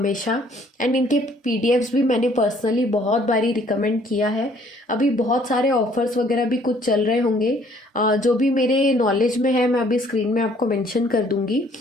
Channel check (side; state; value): both; normal; correlation 0.61